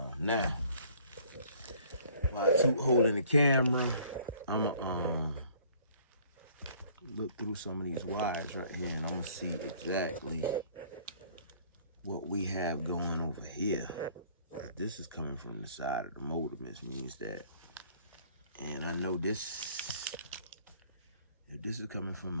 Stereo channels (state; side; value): inverted; both; correlation -0.56